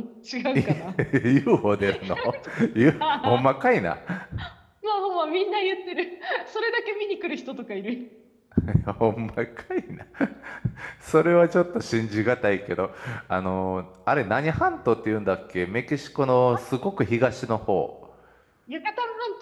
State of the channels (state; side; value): identical; both; correlation 1.00